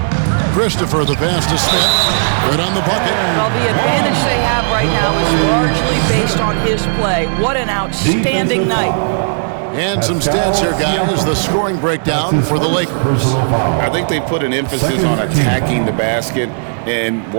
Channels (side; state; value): left; silent; digital silence